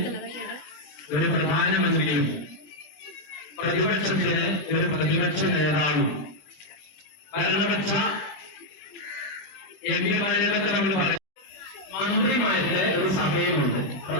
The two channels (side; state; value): right; late; 21 ms